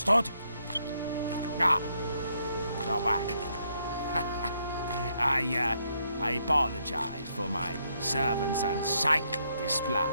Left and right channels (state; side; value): inverted; both; correlation -0.74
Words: Ah, you're back. I apologize for my servant's unsightly